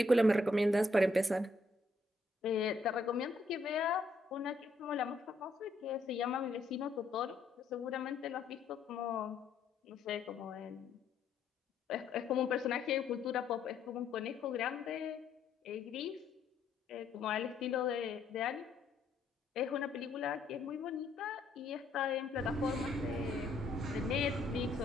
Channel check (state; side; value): quieter; right; 3.0 dB